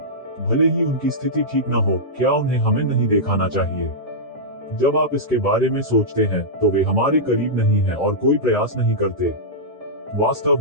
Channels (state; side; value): normal; both; correlation -0.12